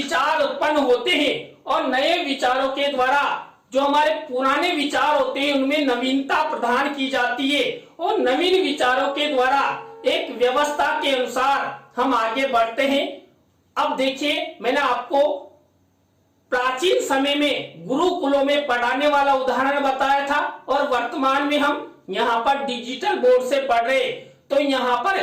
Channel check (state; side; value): identical; both; correlation 1.00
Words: उत्पन्न होते हैं और नए विचारों के द्वारा जो हमारे पुराने विचार होते हैं उनमें नवीनता प्रदान की जाती है और नवीन विचारों के द्वारा एक व्यवस्था के अनुसार हम आगे बढ़ते हैं। अब देखिए मैंने आपको प्राचीन समय में गुरुकुलों में पढ़ाने वाला उदाहरण बताया था और वर्तमान में हम यहाँ पर डिजिटल बोर्ड से पढ़ रहे, तो यहाँ पर